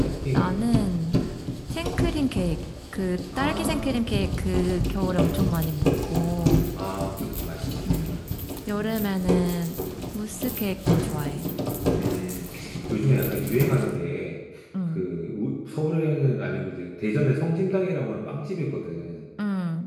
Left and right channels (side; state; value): both; identical; correlation 1.00